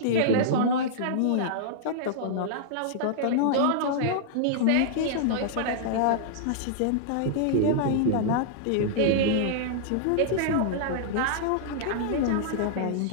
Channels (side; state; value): both; different; correlation -0.02